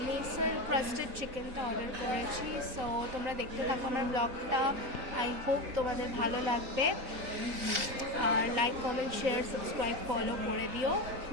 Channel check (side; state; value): left; late; 3.8 ms